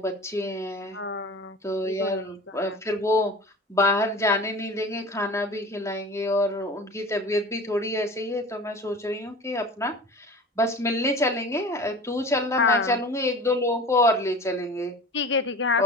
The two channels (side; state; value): both; normal; correlation 0.38